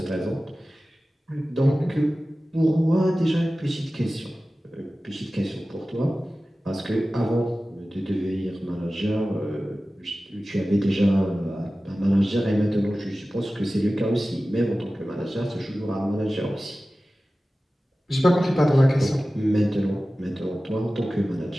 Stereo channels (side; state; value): both; normal; correlation 0.96